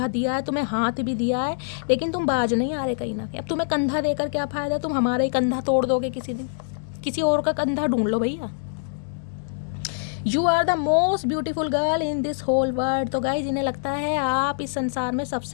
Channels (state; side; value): silent; right; digital silence